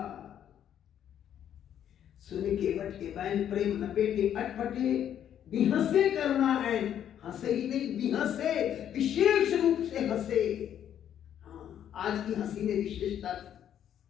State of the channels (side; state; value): right; quieter; 10.0 dB